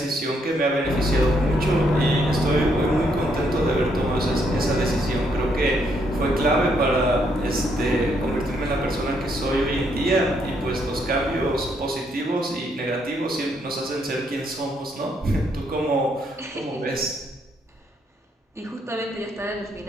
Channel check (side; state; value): both; normal; correlation 0.73